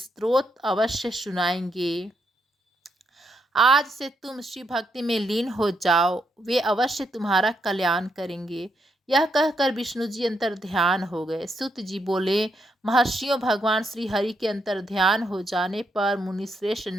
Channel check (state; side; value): normal; both; correlation 0.78